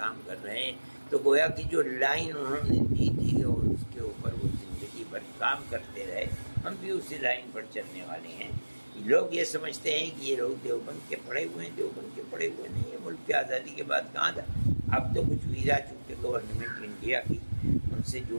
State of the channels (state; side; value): inverted; both; correlation -1.00